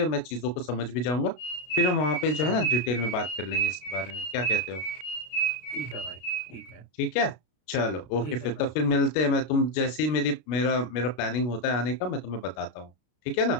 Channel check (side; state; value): right; late; 33 ms